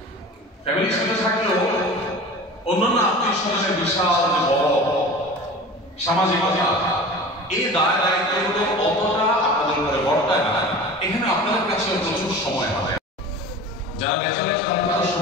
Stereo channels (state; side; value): normal; both; correlation 0.37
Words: ফ্যামিলির সাথে থাকলেও অন্যান্য আত্মীয় স্বজনের বিশাল যে বড় সামাজিকতা, এই দায় দায়িত্বগুলো অতটা আপনাদের উপরে বর্তায় না। এখানে আপনাদের কাছে প্রচুর সময় হবে। যারা ব্যাচেলর তাদের